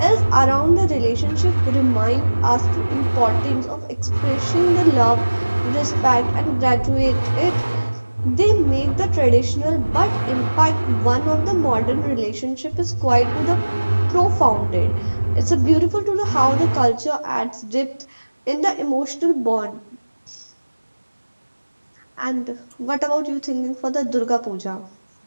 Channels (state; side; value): inverted; both; correlation -1.00